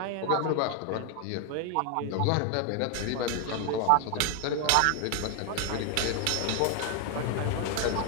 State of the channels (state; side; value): different; both; correlation 0.00